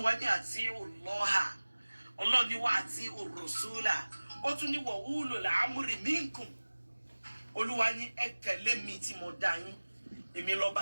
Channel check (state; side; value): inverted; both; correlation -1.00